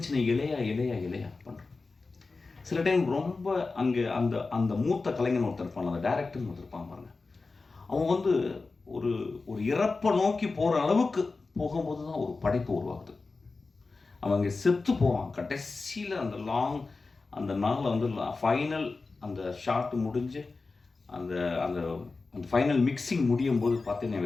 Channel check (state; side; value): quieter; right; 3.9 dB